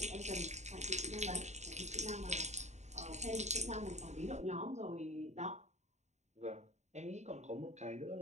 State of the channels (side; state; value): left; late; 0.33 ms